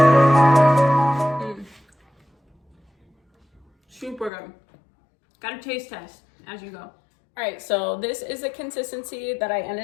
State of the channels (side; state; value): right; drops out; at 4.3 s